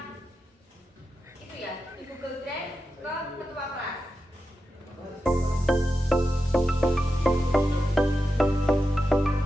itu ya di Google Drive ke ketua kelas.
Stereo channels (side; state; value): both; normal; correlation 0.90